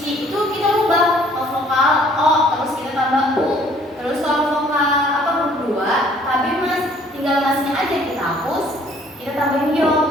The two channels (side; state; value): both; normal; correlation 0.59